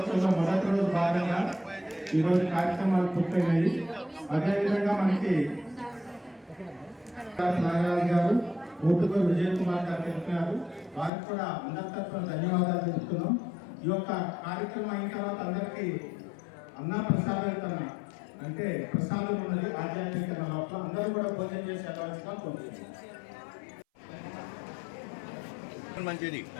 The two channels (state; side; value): drops out; right; at 11.1 s